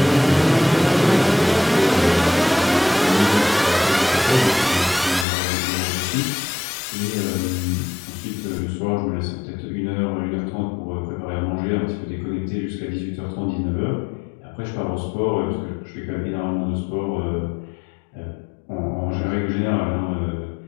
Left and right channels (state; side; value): drops out; right; at 5.2 s